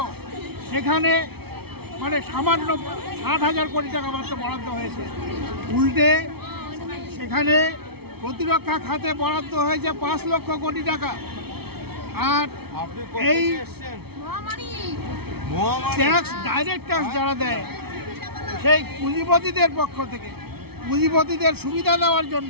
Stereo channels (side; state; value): left; late; 0.96 ms